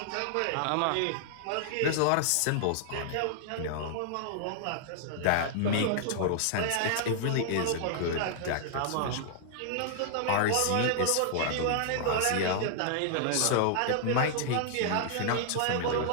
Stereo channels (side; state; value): both; different; correlation -0.01